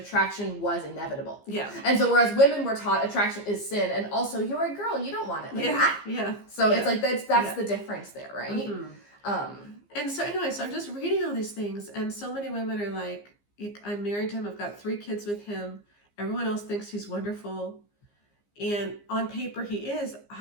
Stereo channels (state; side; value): late; right; 15 ms